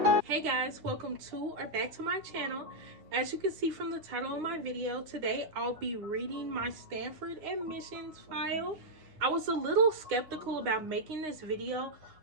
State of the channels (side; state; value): left; late; 9.6 ms